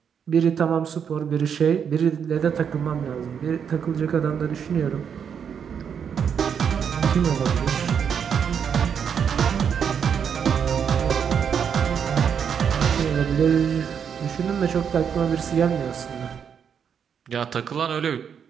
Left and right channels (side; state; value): left; quieter; 7.5 dB